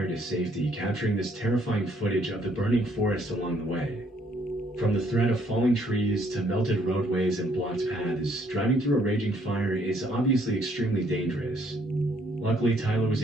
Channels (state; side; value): normal; both; correlation 0.66